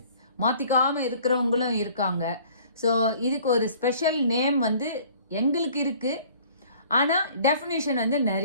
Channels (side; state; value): both; inverted; correlation -0.53